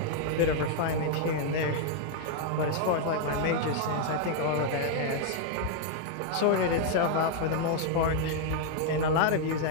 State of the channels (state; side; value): different; both; correlation 0.00